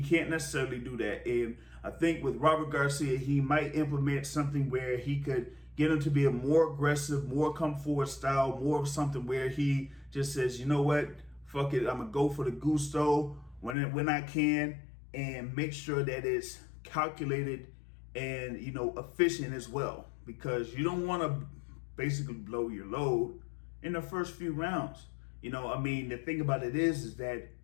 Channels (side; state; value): right; drops out; at 13.8 s